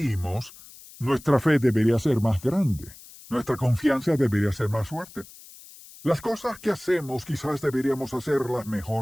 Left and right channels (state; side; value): noise; left; hiss, 20 dB below the sound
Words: nuestra fe debería ser más grande. Nuestra confianza debería ser más fuerte. Las cosas que hacemos quizás deberíamos hacerlas